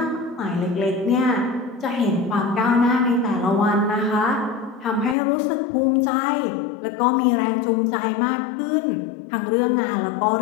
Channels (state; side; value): drops out; right; at 5.2 s